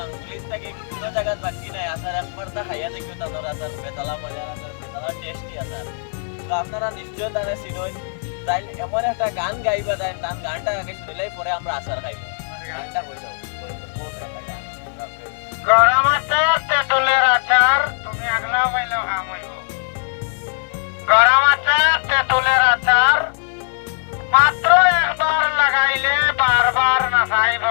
থেকে কোনো জায়গায় বাকি নাই আচার একবার তা খাইয়া দেখিও তাদের আচার বেতালা মজা আচার বেতালা টেস্টি আচার তো আপনারা নিশ্চয় তারা চিনই তাই এমন একটা গান গাইবা তাই তার গানটা আগে শুনলেই পরে আমরা আচার খাইব গানটা কই দাও গরম আচার তেঁতুলের আচার তুমি আগলা পাইলেও হাম হইব গরম আচার তেঁতুলের আচার মাত্র একবার লাগাইলে বারবার না চাইব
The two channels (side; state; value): right; silent; digital silence